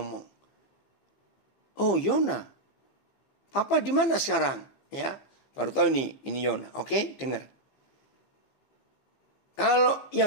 Oh, Yona. Papa di mana sekarang? Ya, baru tahu nih, ini Yona. Oke, dengar. Kalau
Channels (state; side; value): late; right; 15 ms